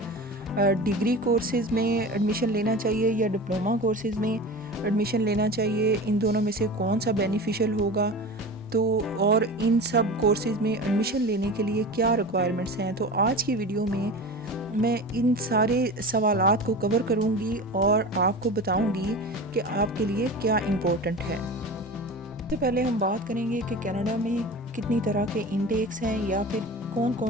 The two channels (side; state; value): both; normal; correlation 0.32